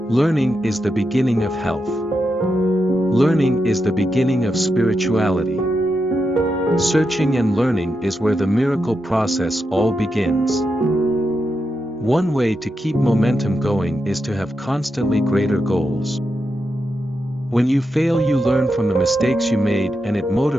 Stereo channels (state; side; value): normal; both; correlation 0.86